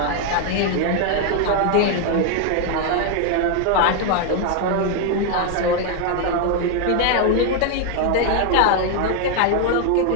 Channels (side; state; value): both; different; correlation 0.01